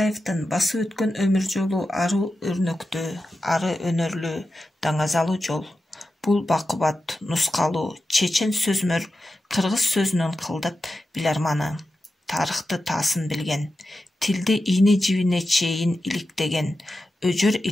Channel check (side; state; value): both; normal; correlation 0.91